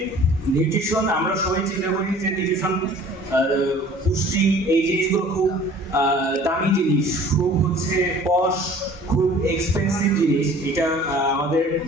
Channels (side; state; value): both; normal; correlation 0.49